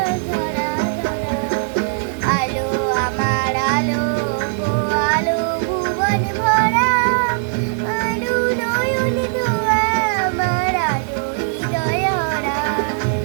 ধরা ধরা, আলো আমার আলো গো আলো ভুবন ভরা, আলো নয়নে ধোয়া আমার আলো হৃদয় হারা।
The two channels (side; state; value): left; silent; digital silence